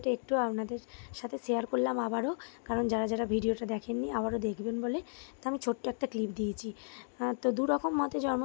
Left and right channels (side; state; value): right; silent; digital silence